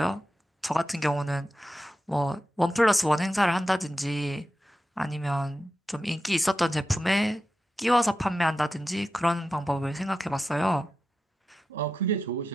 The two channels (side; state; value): both; normal; correlation 0.91